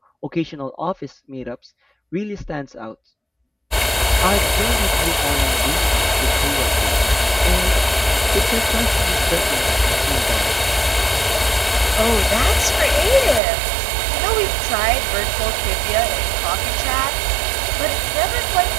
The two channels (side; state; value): left; drops out; at 13.4 s